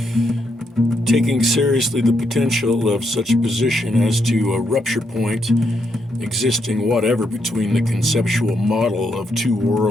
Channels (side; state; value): both; normal; correlation 0.78